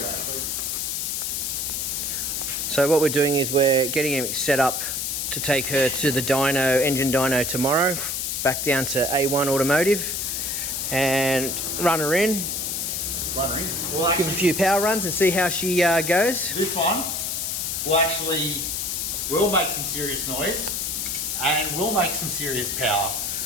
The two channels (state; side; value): noise; left; hiss, 2 dB below the sound